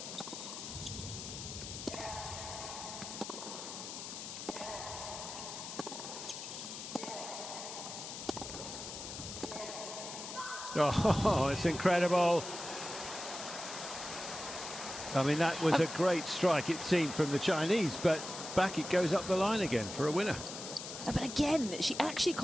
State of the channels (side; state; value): left; noise; hiss, 8 dB below the sound